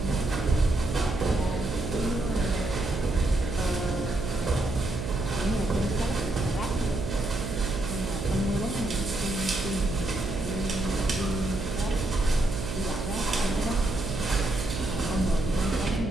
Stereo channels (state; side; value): noise; right; hum, 5 dB below the sound